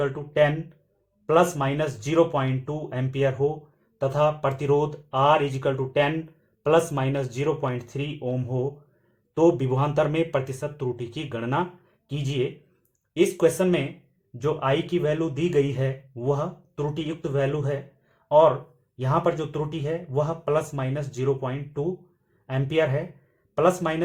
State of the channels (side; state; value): both; identical; correlation 1.00